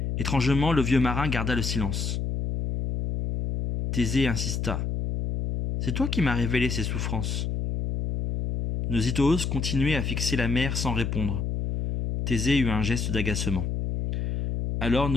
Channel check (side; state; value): left; noise; hum, 1 dB below the sound